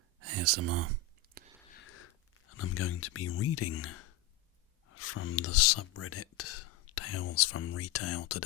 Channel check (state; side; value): quieter; right; 5.9 dB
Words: ASMR, and I'm going to be reading from the subreddit TalesFromRetail